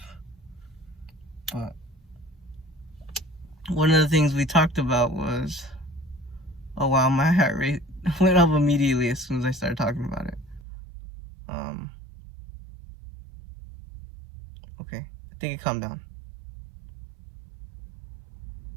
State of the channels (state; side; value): drops out; left; at 10.7 s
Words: But one of the things we talked about was, oh wow, my heart rate went up immediately as soon as I started talking about it. Okay, I think it calmed down.